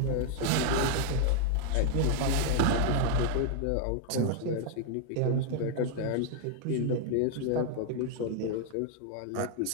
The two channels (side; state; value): both; different; correlation 0.00